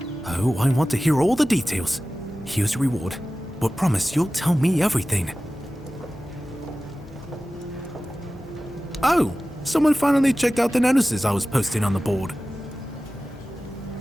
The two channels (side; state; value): both; normal; correlation 0.96